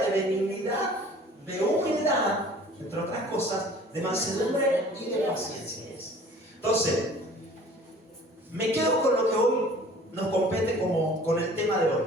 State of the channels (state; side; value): normal; both; correlation 0.49